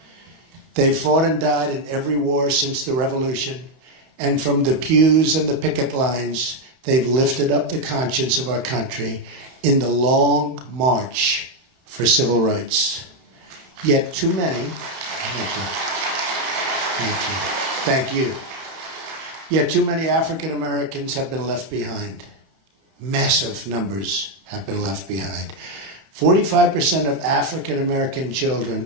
They fought and died in every war since the Revolution, and from the pews and the picket lines, they've lifted up the conscience of our country in the long march for civil rights. Yet too many, thank you. Yet too many African Americans have been left behind. Massive numbers have been left behind. 45% of African American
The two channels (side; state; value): left; late; 31 ms